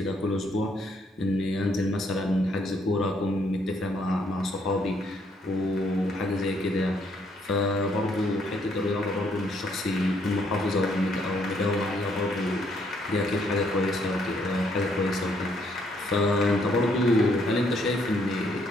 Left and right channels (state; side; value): normal; both; correlation 0.70